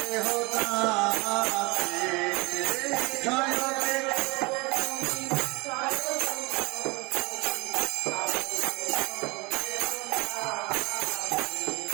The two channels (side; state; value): left; quieter; 26.1 dB